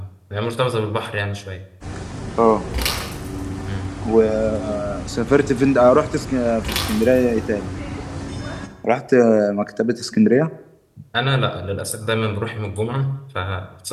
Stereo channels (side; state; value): both; identical; correlation 1.00